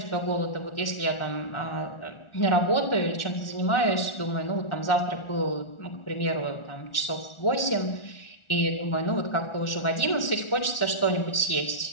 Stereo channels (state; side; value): late; right; 1.4 ms